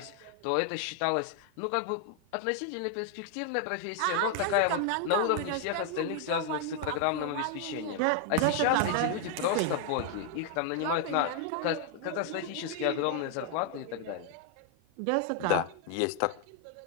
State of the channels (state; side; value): different; both; correlation 0.00